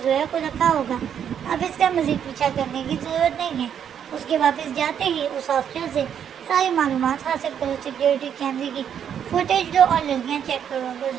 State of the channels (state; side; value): quieter; left; 8.7 dB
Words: زویا کو رکھا ہوگا۔ اب اس کا مزید پیچھا کرنے کی ضرورت نہیں ہے۔ اس کے واپس جاتے ہی اس ہاسٹل سے ساری معلومات حاصل کرو، سیکیورٹی کیمرے کی فوٹیج لو اور لڑکیاں چیک کرو۔ اگر